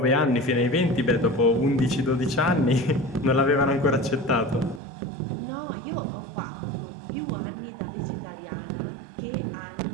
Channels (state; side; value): drops out; left; at 4.8 s